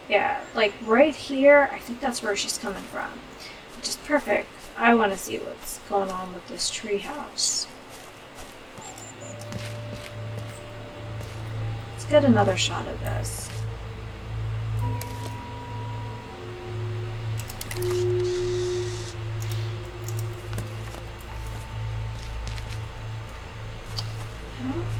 yeah, like right here. I think that's where she's coming from, which is perfect. I want to see what's going on with this tree house. Let's get another shot of this.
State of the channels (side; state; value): both; identical; correlation 1.00